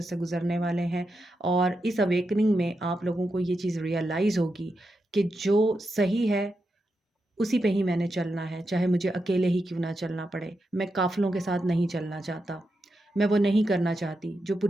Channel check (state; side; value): normal; both; correlation 0.87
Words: से गुज़रने वाले हैं और इस अवेकनिंग में आप लोगों को ये चीज़ रियलाइज़ होगी कि जो सही है उसी पे ही मैंने चलना है, चाहे मुझे अकेले ही क्यों ना चलना पड़े। मैं काफ़िलों के साथ नहीं चलना चाहता। मैं वो नहीं करना चाहती जो